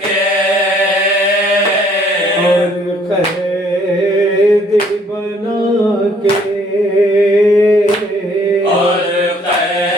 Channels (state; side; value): normal; both; correlation 0.62